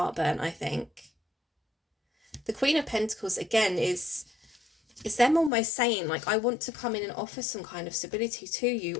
burnt, I think. The Queen of Pentacles, again, is them almost saying, like, I want to come in and offer some kind of stability to you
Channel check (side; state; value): right; drops out; at 5.5 s